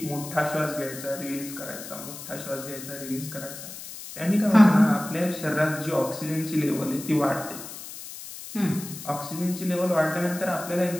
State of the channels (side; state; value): left; noise; hiss, 12 dB below the sound